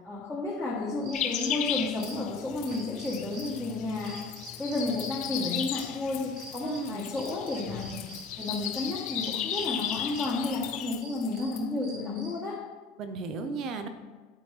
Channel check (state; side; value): quieter; right; 3.4 dB